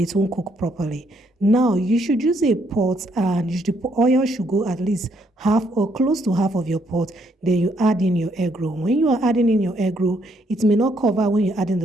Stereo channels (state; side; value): normal; both; correlation 0.71